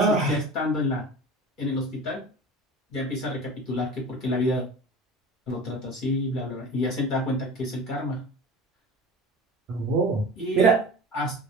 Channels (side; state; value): both; normal; correlation 0.36